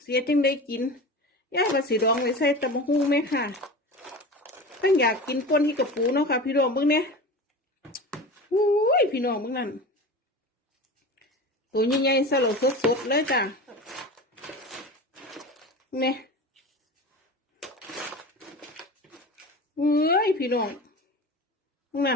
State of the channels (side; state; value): both; normal; correlation 0.32